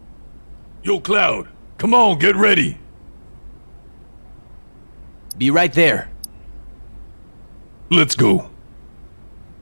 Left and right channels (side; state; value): both; inverted; correlation -1.00